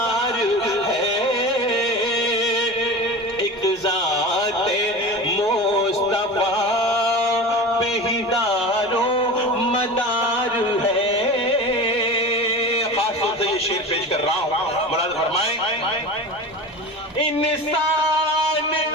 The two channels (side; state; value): left; noise; rumble, 29 dB below the sound